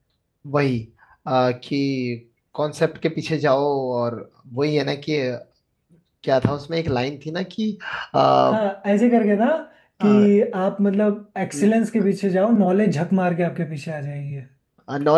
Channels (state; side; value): identical; both; correlation 1.00